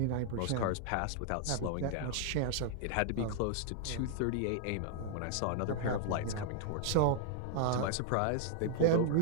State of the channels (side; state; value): both; different; correlation -0.01